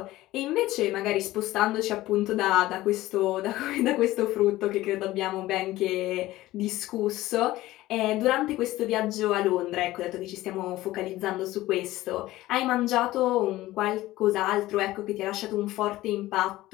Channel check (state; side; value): quieter; right; 16.7 dB